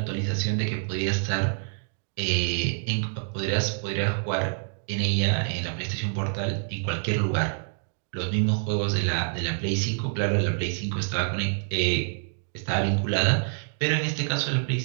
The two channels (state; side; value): silent; left; digital silence